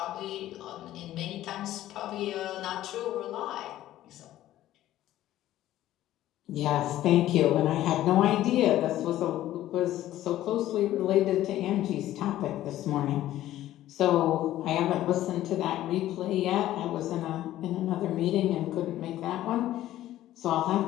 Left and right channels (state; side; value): quieter; right; 13.8 dB